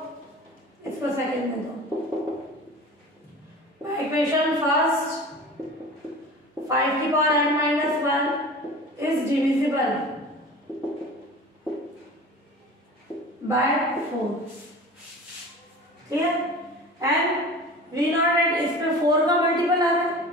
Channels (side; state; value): both; normal; correlation 0.38